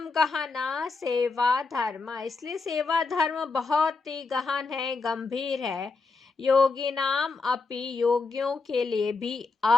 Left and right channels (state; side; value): quieter; right; 4.1 dB